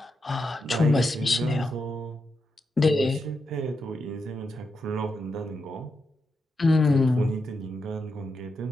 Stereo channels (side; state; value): both; normal; correlation 0.85